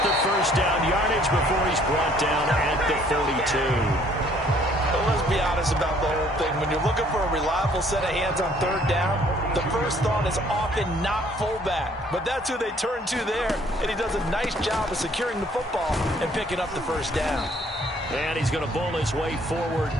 the first down yardage before he's brought down at the 42. Well, let's be honest about the whole thing. When you're looking for a reliable set of hands on 3rd down, the first thought is often not fullback. But that's who they turn to there, and he does a nice job of securing the football and picking up the first down. And he's going to bowl his way forward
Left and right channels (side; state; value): both; normal; correlation 0.61